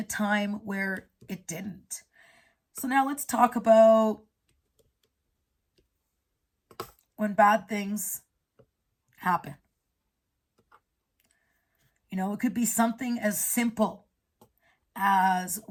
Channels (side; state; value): both; identical; correlation 1.00